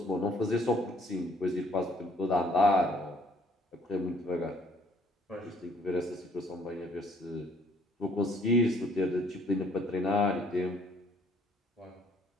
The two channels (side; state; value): both; normal; correlation 0.62